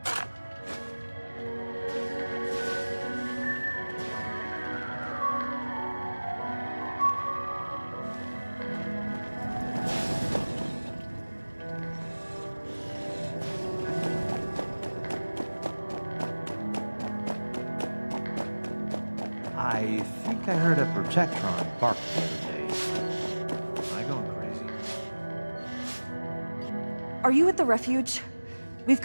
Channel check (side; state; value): both; inverted; correlation -1.00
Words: I think I heard a Protectron bark the other day. Am I going crazy? Are you at the refuge? We've